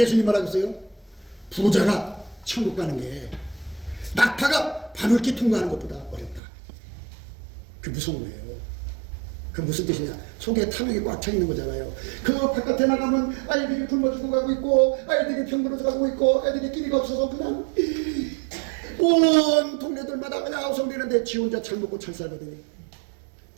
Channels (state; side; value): drops out; left; at 6.4 s